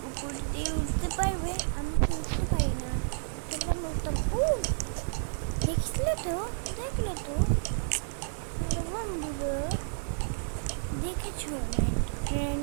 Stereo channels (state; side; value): silent; left; digital silence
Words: উপর দিয়ে উঠতে পারবে? আমি তো উঠতে পারি না। তোমরা নতুন দেখলে তো বন্ধুরা দেখেছো